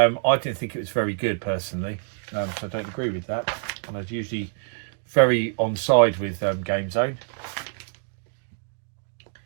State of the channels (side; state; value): left; silent; 61 dB below the other